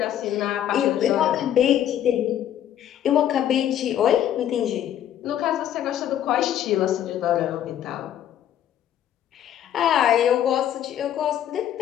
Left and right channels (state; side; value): quieter; right; 10.8 dB